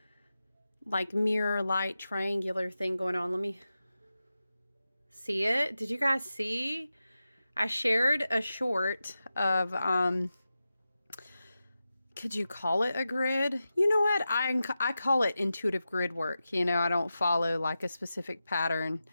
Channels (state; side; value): inverted; both; correlation -0.92